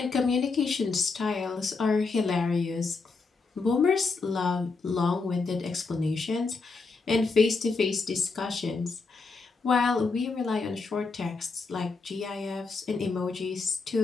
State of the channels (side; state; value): right; quieter; 4.1 dB